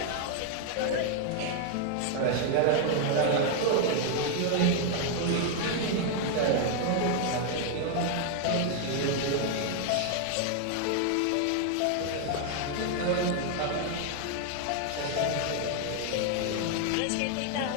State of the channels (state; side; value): different; both; correlation 0.00